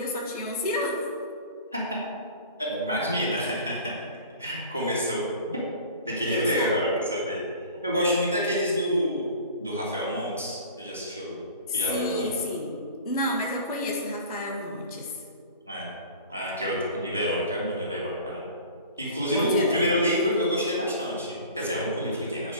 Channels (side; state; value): both; inverted; correlation -0.41